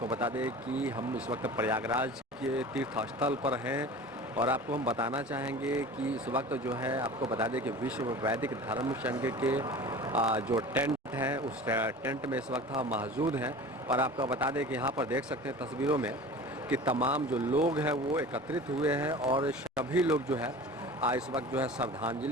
बता दें कि हम इस वक्त प्रयागराज के तीर्थ स्थल पर हैं और आपको हम बताना चाहेंगे कि इस वक्त जो है आपको बता दें कि विश्व वैदिक धर्म संघ के जो टेंट है उस टेंट में इस वक्त हम मौजूद हैं और आपको बता दें कि यहाँ पर देख सकते हैं तस्वीरों में कि तमाम जो लोग हैं वो एकत्रित हुए हैं और सभी लोग जो है इस वक्त जो है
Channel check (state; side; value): normal; both; correlation 0.38